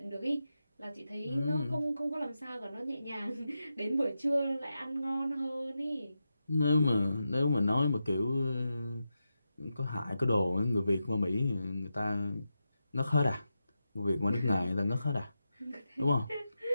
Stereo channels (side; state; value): both; inverted; correlation -0.89